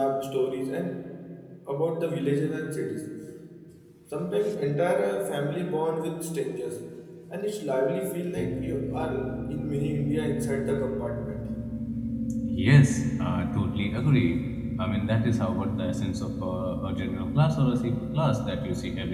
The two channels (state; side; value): identical; both; correlation 1.00